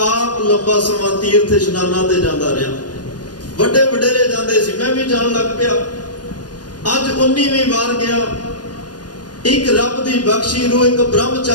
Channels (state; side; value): late; right; 0.69 ms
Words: ਆਪ ਲੰਬਾ ਸਮਾਂ ਤੀਰਥ ਇਸ਼ਨਾਨਾਂ ਤੇ ਜਾਂਦਾ ਰਿਹਾ। ਵੱਡੇ ਵਡੇਰੇ ਜਾਂਦੇ ਸੀ, ਮੈਂ ਵੀ ਜਾਣ ਲੱਗ ਪਿਆ। ਅੱਜ 19ਵੀਂ ਵਾਰ ਗਿਆ। ਇੱਕ ਰੱਬ ਦੀ ਬਖਸ਼ੀ ਰੂਹ ਇੱਕ